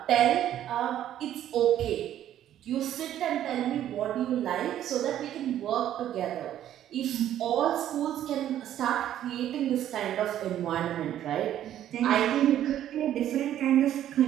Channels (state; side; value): quieter; left; 11.5 dB